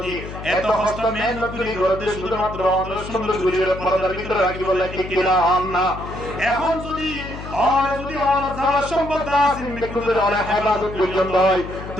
এত কষ্ট মেহনত করে করতে শুধুমাত্র অন সুন্দর গুলির পর্দার ভিতরে রাখি বললাই কি কিনা না এখন যদি অন জামার সম্পদ দাসিন মিকুদের অন হেফাজত করিলেন হয়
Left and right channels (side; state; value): left; noise; hum, 10 dB below the sound